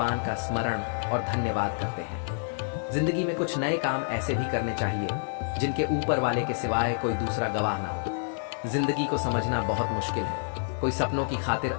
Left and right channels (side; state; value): right; silent; digital silence